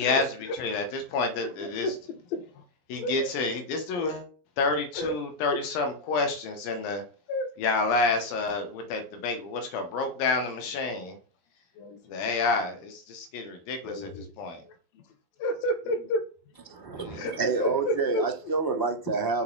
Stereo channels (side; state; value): right; late; 12 ms